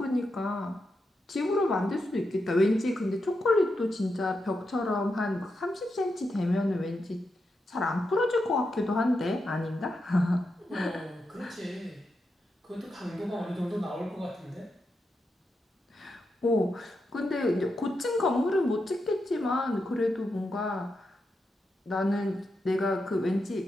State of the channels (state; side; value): normal; both; correlation 0.86